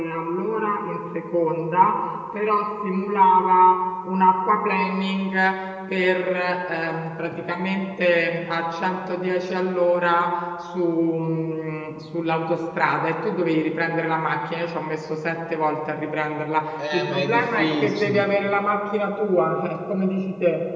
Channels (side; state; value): both; identical; correlation 1.00